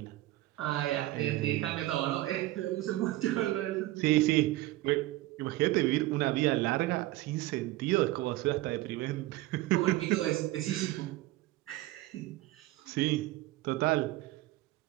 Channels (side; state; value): left; quieter; 17.4 dB